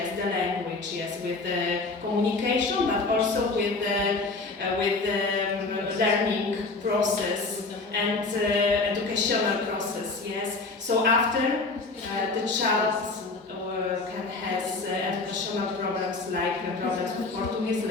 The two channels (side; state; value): right; quieter; 3.7 dB